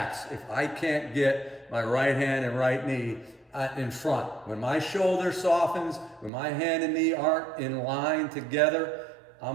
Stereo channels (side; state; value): left; drops out; at 6.3 s